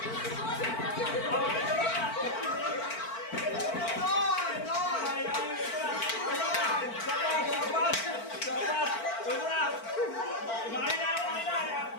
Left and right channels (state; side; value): late; right; 4.5 ms